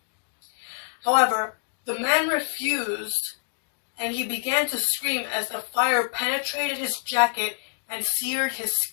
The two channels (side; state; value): right; silent; digital silence